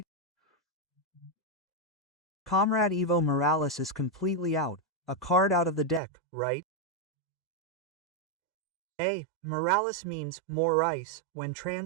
Comrade Evo Morales is completely out, a card out of the deck, right? Morales means more ice when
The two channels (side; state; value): left; drops out; at 6.0 s